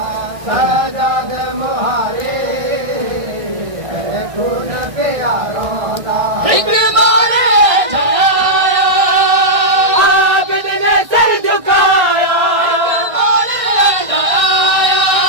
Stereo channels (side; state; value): left; late; 1.6 ms